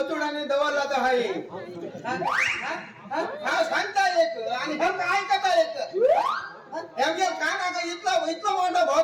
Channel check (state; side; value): identical; both; correlation 1.00